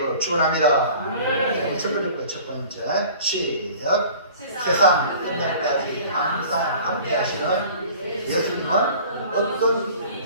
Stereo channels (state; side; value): inverted; both; correlation -0.45